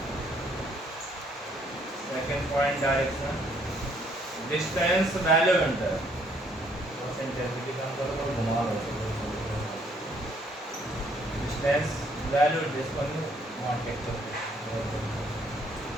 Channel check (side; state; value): both; normal; correlation 0.65